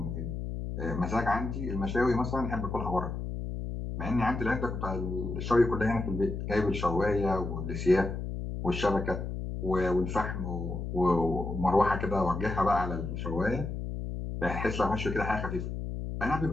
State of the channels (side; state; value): left; noise; hum, 5 dB below the sound